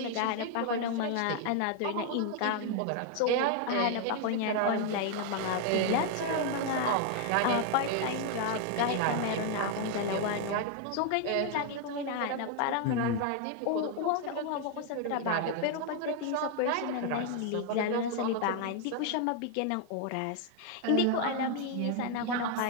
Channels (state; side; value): different; both; correlation 0.00